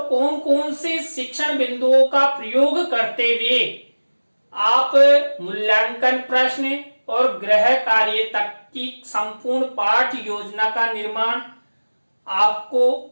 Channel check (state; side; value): inverted; both; correlation -1.00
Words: कौन कौन से शिक्षण बिंदुओं का प्रयोग करते हुए आप मूल्यांकन प्रश्न और गृह कार्य तक की संपूर्ण पाठ योजना का निर्माण आपको